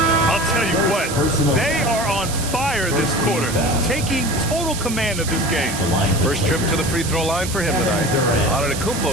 I'll tell you what, they are on fire this quarter, taking total command of this game. First trip to the free throw line for him tonight.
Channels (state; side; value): noise; right; hiss, 7 dB below the sound